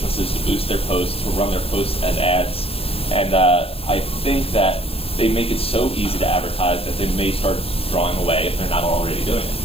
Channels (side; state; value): right; late; 0.28 ms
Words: to boost their posts, to run their posts as ads. And I think that they make it so easy to advertise that they may start drawing away if they're not already doing